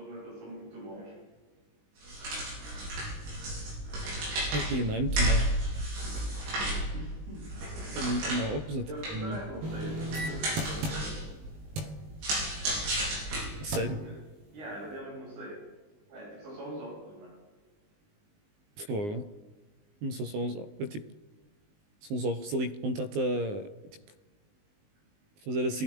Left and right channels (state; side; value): late; left; 19 ms